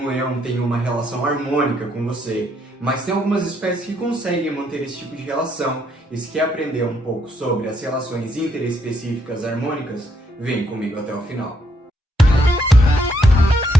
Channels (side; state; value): both; normal; correlation 0.74